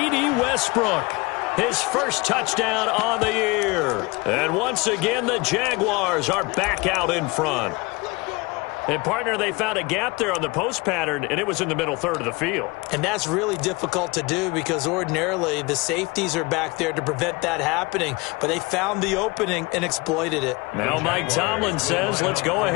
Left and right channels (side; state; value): right; quieter; 25.1 dB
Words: Westbrook, his first touchdown on the year. And once again, the Jaguars are back out in front. And, partner, they found a gap there on the post pattern, and it was in the middle 3rd of the field. And that's really difficult to do because ordinarily the safeties are back there to prevent that happening. But they found the opening and exploited it. Now Mike Tomlin says, let's go